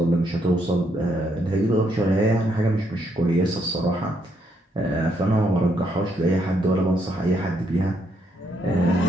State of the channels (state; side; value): normal; both; correlation 0.74